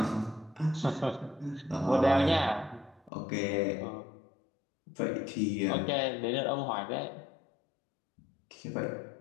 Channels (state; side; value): drops out; right; at 3.1 s